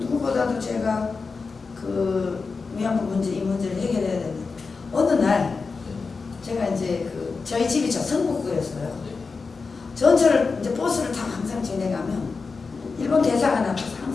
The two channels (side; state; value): right; quieter; 4.5 dB